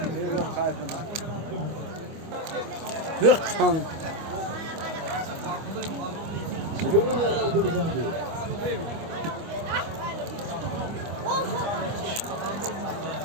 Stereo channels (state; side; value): late; left; 25 ms